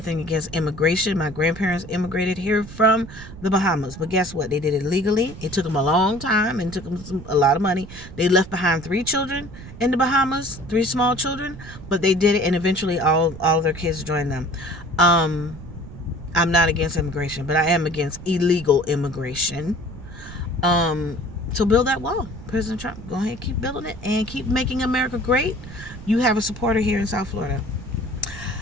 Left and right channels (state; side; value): noise; right; rumble, 14 dB below the sound